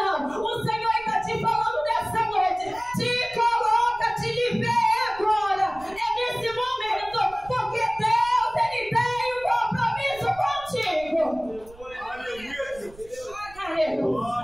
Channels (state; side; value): noise; right; rumble, 22 dB below the sound